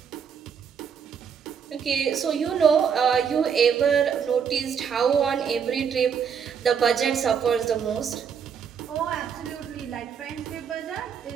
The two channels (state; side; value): quieter; left; 7.2 dB